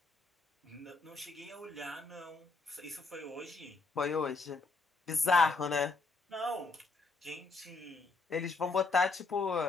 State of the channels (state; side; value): quieter; right; 3.8 dB